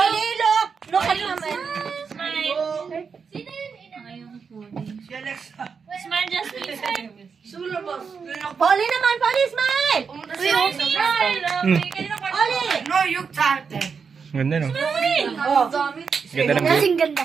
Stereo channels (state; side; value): quieter; left; 5.8 dB